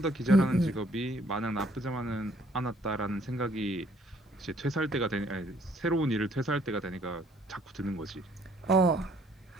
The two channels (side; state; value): both; normal; correlation 0.63